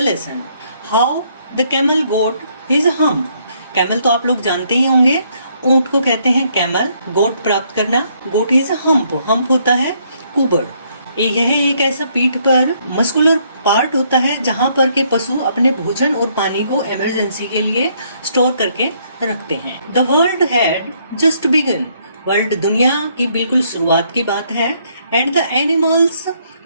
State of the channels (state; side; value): inverted; both; correlation -0.70